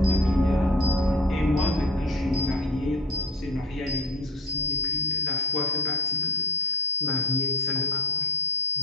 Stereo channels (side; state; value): both; normal; correlation 0.33